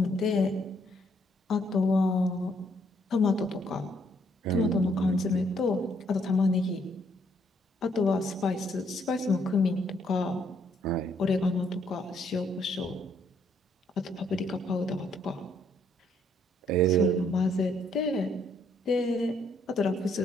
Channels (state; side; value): normal; both; correlation 0.70